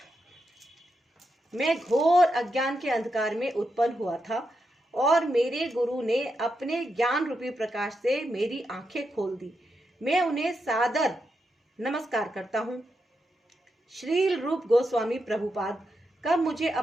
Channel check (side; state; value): both; normal; correlation 0.85